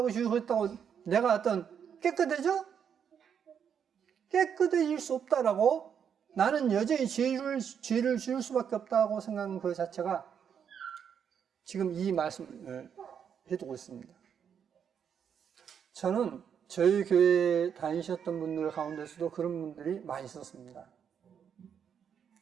죽으셨다고 내가 어떤 깨끗해져? 깨끗해질 수 없다라고 나는 여전히 죄를 지을 수밖에 없다고 생각하는 그 자체가 지금 이 말씀을 해두고 있습니다. 저는 저희 교회에 다니셨던 분들 가운데서도 그런 분들이 많이 있었습니다.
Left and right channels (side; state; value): left; quieter; 7.8 dB